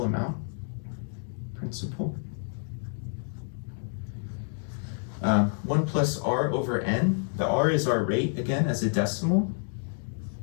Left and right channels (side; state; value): right; silent; digital silence